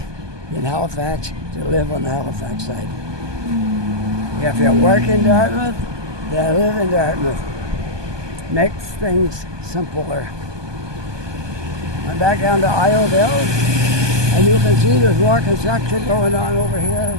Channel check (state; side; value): late; left; 1.2 ms